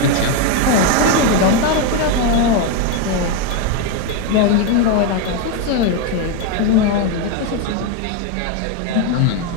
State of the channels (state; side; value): different; both; correlation 0.02